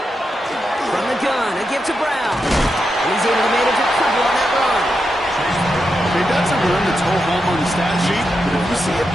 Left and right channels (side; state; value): both; normal; correlation 0.86